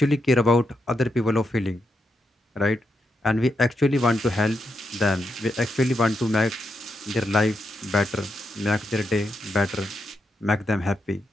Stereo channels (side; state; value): both; normal; correlation 0.83